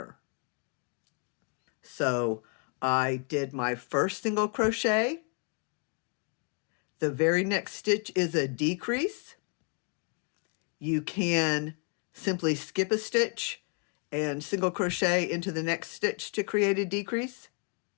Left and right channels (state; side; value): quieter; right; 37.9 dB